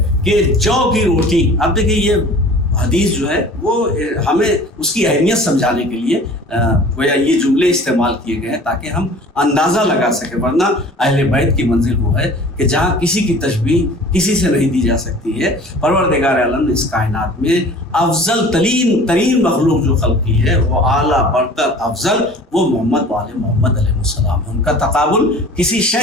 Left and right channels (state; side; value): normal; both; correlation 0.45